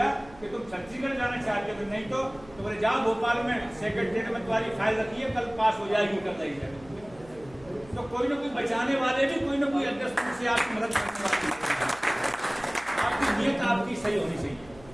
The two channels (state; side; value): noise; right; hum, 22 dB below the sound